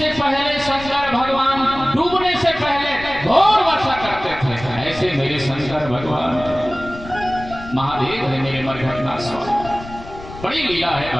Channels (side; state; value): left; noise; rumble, 14 dB below the sound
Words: पहले शंकर भगवान डूबने से पहले घोर वर्षा करते थे। ऐसे मेरे शंकर भगवान महादेव है मेरे मरघट नाथ स्वामी। बड़ी लीला है